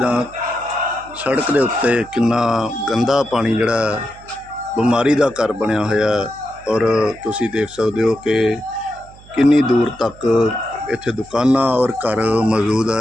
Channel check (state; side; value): noise; right; hum, 22 dB below the sound